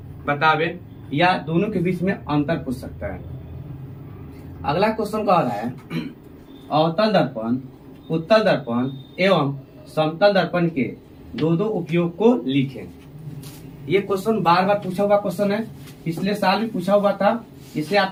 बतावे, या दोनों के बीच में अंतर पूछ सकता है। अगला क्वेश्चन कह रहा है अवतल दर्पण, उत्तल दर्पण एवं समतल दर्पण के दो उपयोग को लिखें। ये क्वेश्चन बार बार पूछा हुआ क्वेश्चन है, पिछले साल भी पूछा हुआ था, इसे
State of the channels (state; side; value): identical; both; correlation 1.00